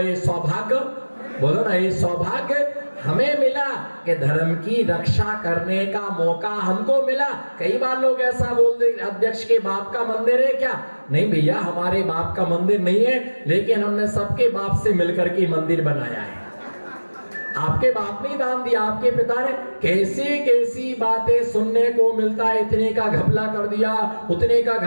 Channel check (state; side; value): inverted; both; correlation -1.00